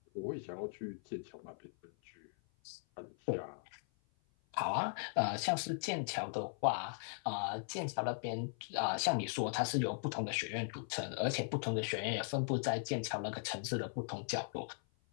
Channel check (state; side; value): silent; right; 52 dB below the other